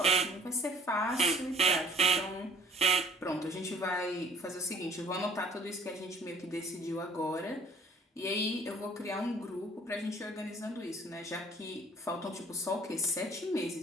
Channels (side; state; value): both; normal; correlation 0.53